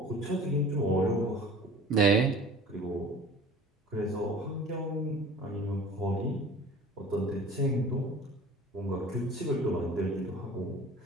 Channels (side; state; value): both; normal; correlation 0.43